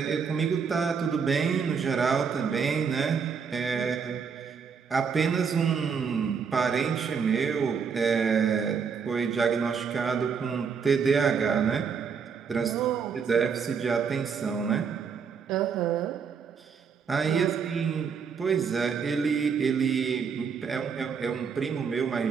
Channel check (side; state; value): left; quieter; 6.2 dB